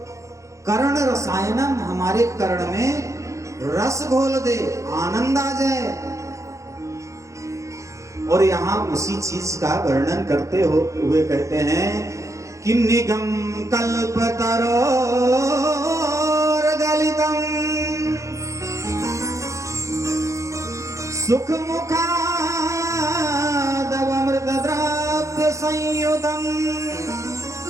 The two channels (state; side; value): late; left; 0.15 ms